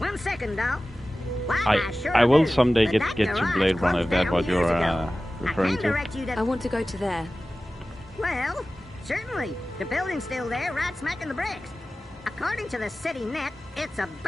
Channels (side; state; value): both; normal; correlation 0.96